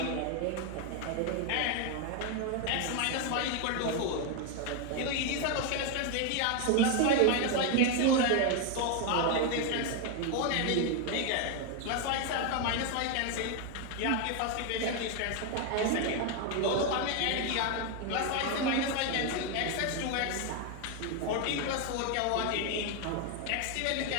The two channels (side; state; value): both; different; correlation 0.01